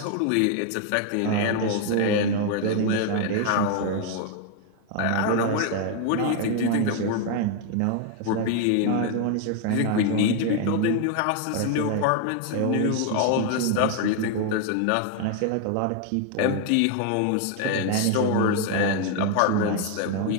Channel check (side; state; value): both; different; correlation 0.00